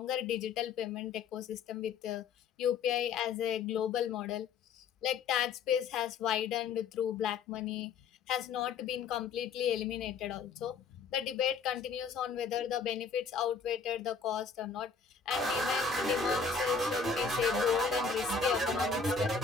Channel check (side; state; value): right; quieter; 5.4 dB